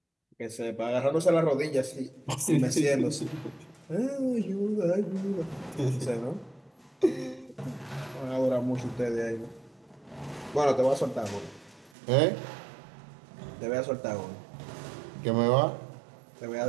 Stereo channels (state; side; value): drops out; left; at 11.9 s